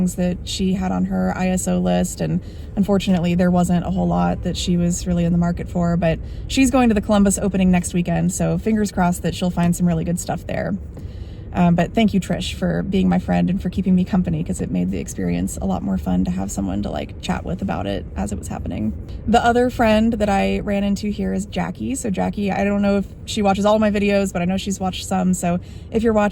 that she had on her ISO list. And unfortunately, there wasn't a whole lot that she was really in the market for, but she's going to the Columbus opening next weekend, so fingers crossed that she'll find some really good stuff there. But thank you, Trish, for being my friend and for keeping me company, because it made the experience a lot more fun to have someone to like chat with about it as it was happening. The other friend that I ran into here is Jackie. So Jackie, I don't know if she watches all of my videos, but I know she's watched some. So if you're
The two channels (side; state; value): both; identical; correlation 1.00